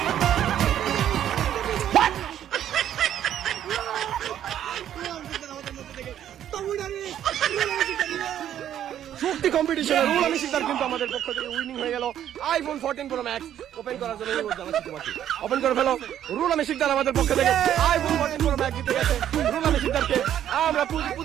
শক্তি কম্পিটিশনে রুহুল আমিন শিকদার কিন্তু আমাদের পক্ষ থেকে উইনিং হয়ে গেল আইফোন 14 প্রো ম্যাক্স ওপেন করার জন্য ওপেন করে ফেলো রুহুল আমিন শিকদার আমাদের পক্ষ থেকে আইফোন 14 প্রো ম্যাক্স জিতে গেছে রুহুল আমিন শিকদারকে আমরা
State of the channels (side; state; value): left; quieter; 10.7 dB